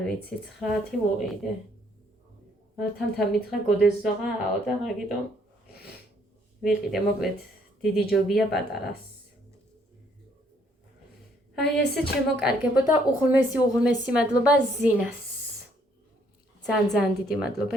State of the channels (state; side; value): normal; both; correlation 0.67